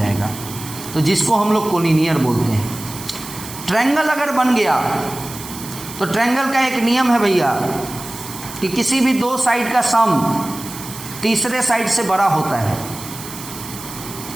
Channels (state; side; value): noise; right; hiss, 12 dB below the sound